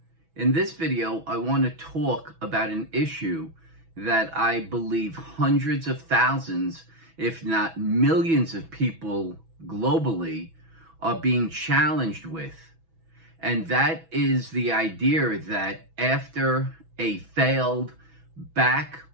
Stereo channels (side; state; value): left; late; 6.1 ms